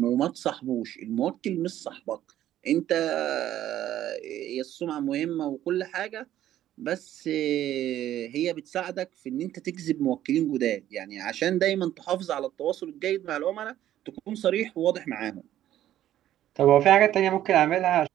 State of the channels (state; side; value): quieter; left; 12.4 dB